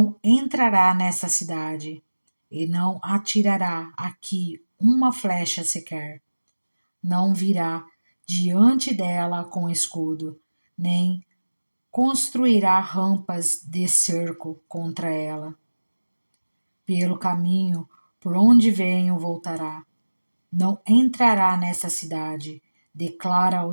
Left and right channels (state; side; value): inverted; both; correlation -1.00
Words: entrará nessa cidade, e não atirará aqui uma flecha sequer. Não virá diante dela com escudo, nem construirá rampas de cerco contra ela. Pelo caminho por onde venho voltará. Não entrará nessa cidade, declara